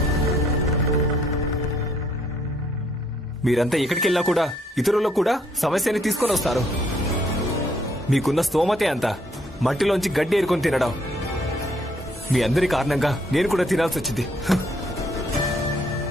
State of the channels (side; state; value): both; normal; correlation 0.68